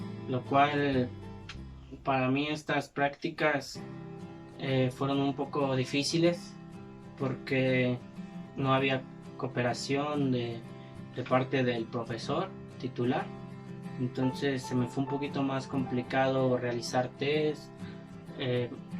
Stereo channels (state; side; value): identical; both; correlation 1.00